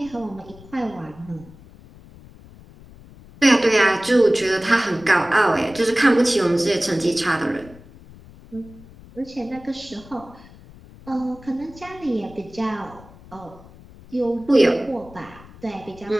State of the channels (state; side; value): noise; left; rumble, 21 dB below the sound